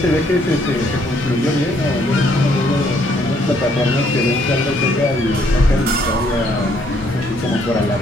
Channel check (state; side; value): normal; both; correlation 0.68